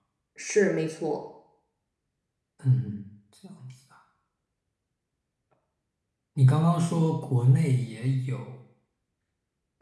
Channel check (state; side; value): identical; both; correlation 1.00